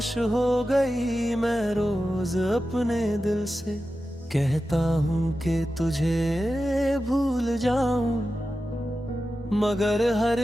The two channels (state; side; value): normal; both; correlation 0.92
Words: हो गई। मैं रोज अपने दिल से कहता हूँ कि तुझे भूल जाऊं, मगर